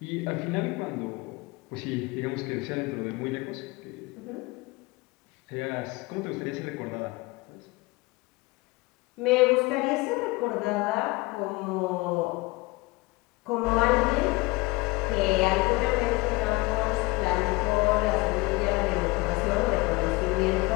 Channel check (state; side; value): quieter; right; 23.4 dB